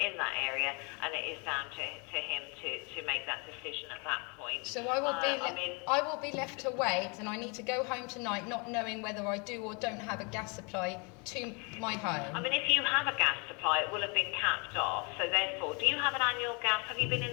that area, and it is down to him to make that decision at that point. So I will be left to wait, and I need to go home tonight not knowing whether I do or don't have a gas supply to my home. I mean, if you have a gas supply, it will have been capped off. So therefore, do you have an annual gas? Have you been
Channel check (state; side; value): quieter; right; 32.3 dB